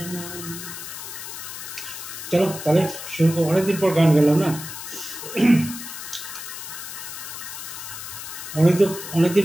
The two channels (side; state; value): left; noise; hiss, 9 dB below the sound